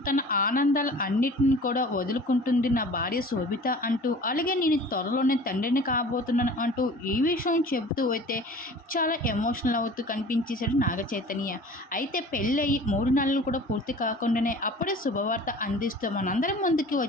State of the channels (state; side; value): normal; both; correlation 0.43